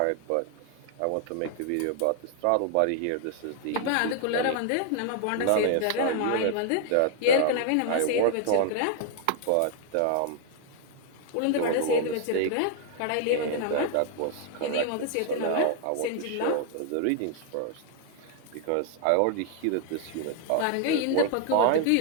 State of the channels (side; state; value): both; different; correlation 0.00